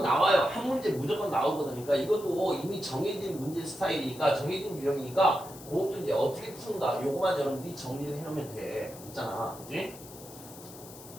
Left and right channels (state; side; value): noise; left; hiss, 17 dB below the sound